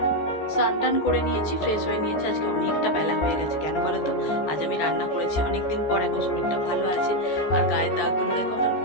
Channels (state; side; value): late; right; 14 ms